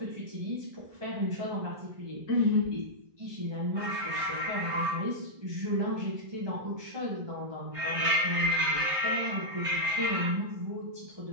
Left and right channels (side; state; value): left; late; 1.6 ms